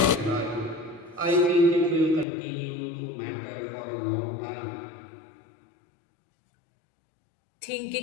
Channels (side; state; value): right; drops out; at 2.2 s